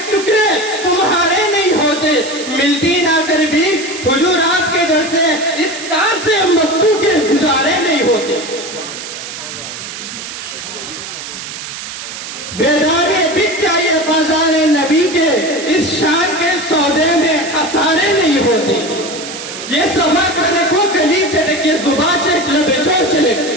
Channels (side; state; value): right; noise; hiss, 9 dB below the sound